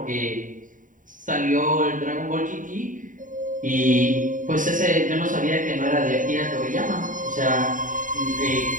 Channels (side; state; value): left; late; 0.38 ms